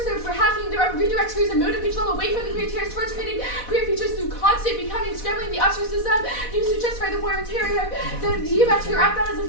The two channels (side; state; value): right; late; 4.1 ms